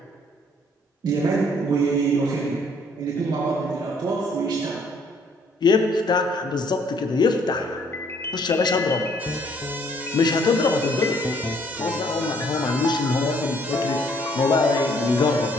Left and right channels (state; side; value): normal; both; correlation 0.63